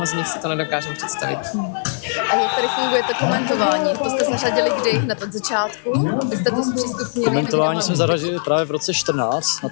z nich si to nedokážeme představit. A jak tady funguje to komentování? To jste zařadili kdy? Hned od začátku? Vy jste to zpřístupnili? Komentování jsme zařadili právě v roce 14 na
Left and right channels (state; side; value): silent; right; digital silence